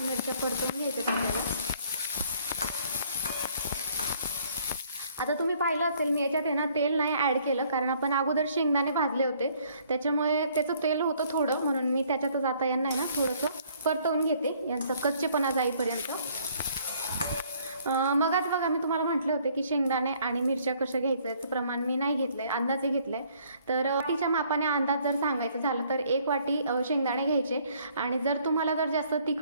मिरच्या परतवून घ्यायच्यात आपल्याला. आता तुम्ही पाहिलं असेल मी याच्यात आहे ना तेल नाही ॲड केलं, कारण आपण अगोदर शेंगदाणे भाजले होते त्याच्यामुळे त्याचं तेल होतं थोडं, म्हणून मी त्याच्यातच आता यांना आहे ना थोडंसं परतवून घेते, यांचा कच्चेपणा जाईपर्यंत. मगच बघा मी तुम्हाला म्हटले होते की शेंगदाणे आणि मिरच्या कशा घ्यायचं याचं प्रमाण मी नाही घेतलं आहे, अंदाजे घेतलं आहे. तर वाटीच्या मापाने अंदाज जर सांगायचं झालं तर 1 वाटी शेंगदाणे घ्यायचे. आणि जर तुम्हाला जर जास्त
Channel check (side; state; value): both; inverted; correlation -0.62